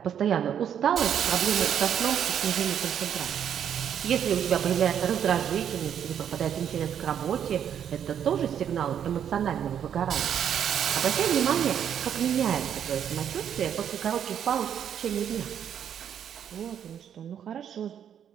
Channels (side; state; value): left; quieter; 9.0 dB